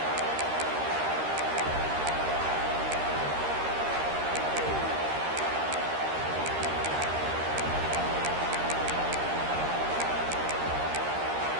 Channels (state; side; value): late; left; 13 ms